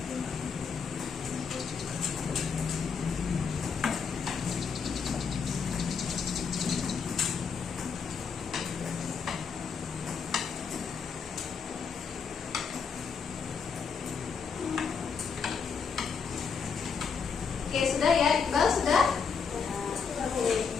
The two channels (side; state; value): right; quieter; 5.9 dB